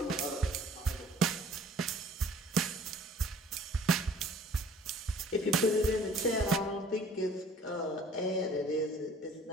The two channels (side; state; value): both; normal; correlation 0.52